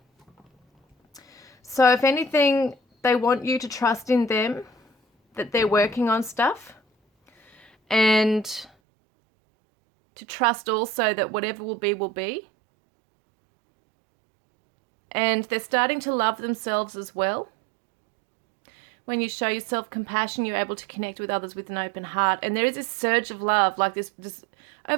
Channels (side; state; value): left; drops out; at 8.7 s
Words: So if anything, they want you to trust in them, that they're working on stuff. And to trust also that whatever will be, will be. And they're starting to love themselves as well. When you show yourself compassion, you're able to connect with others with an open heart. And there is this surge of love, like this